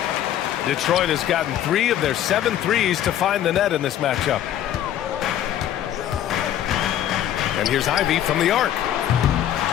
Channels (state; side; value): quieter; right; 11.3 dB